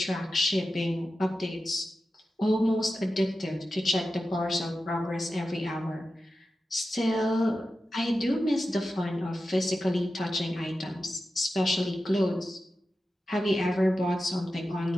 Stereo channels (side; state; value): both; normal; correlation 0.92